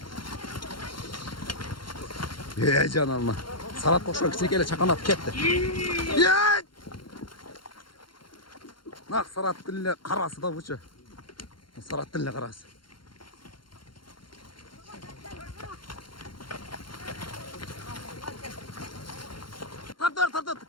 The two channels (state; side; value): late; right; 0.73 ms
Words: Ей, жан алма. Сарат қоқшан кішінекелі чақанап кетті. Ей! Нақ сарат тіліне қарасы да бұшы. Сарат тіліне қарасы. Тартыр.